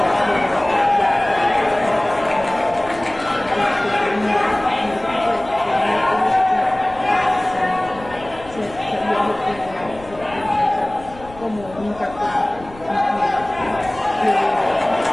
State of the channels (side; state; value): left; noise; rumble, 19 dB below the sound